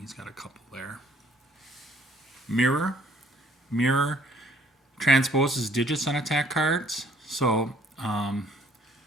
got a couple there. Mirror. Mirror transposes digits on attack cards. So,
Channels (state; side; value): normal; both; correlation 0.60